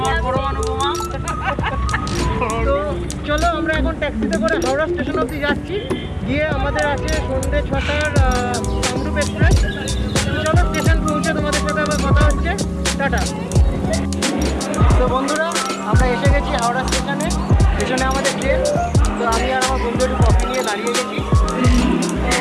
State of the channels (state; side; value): identical; both; correlation 1.00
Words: পরমাণু বোমা। তো চলো আমরা এখন ট্যাক্সিতে করে হাওড়া স্টেশন অবধি যাচ্ছি, গিয়ে আমাদের আছে সন্ধ্যে 6টার কামরূপ এক্সপ্রেস। চলো স্টেশন পৌঁছে তোমাদের সাথে আবার কথা হচ্ছে। টাটা। তো বন্ধুরা, আমরা এসে গেছি হাওড়া স্টেশনে। স্টেশনে আমাদের ট্রেন। তো আমি আর আমার বন্ধু একটু কফি নিয়ে দাঁড়িয়ে গেছি।